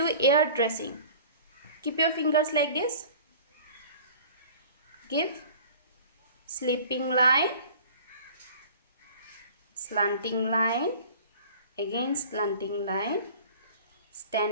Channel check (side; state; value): both; inverted; correlation -0.44